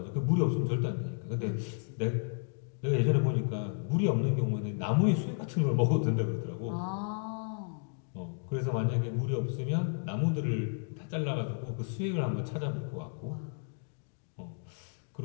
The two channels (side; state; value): right; silent; 56 dB below the other